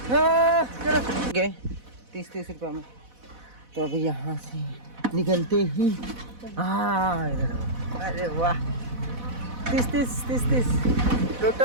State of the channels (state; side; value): late; left; 4.1 ms